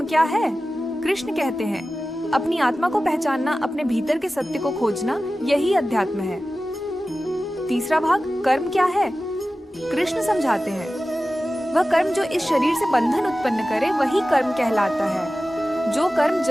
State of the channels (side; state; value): both; normal; correlation 0.95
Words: क्या है? कृष्ण कहते हैं, अपनी आत्मा को पहचानना, अपने भीतर के सत्य को खोजना, यही अध्यात्म है। तीसरा भाग। कर्म क्या है? कृष्ण समझाते हैं, वह कर्म जो इस शरीर से बंधन उत्पन्न करे, वही कर्म कहलाता है। जो कर्म